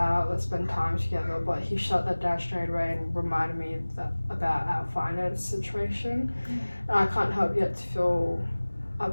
let's spend time together, but he shut that down straight away and reminded me about our finance situation. And I can't help yet to feel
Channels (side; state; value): both; inverted; correlation -1.00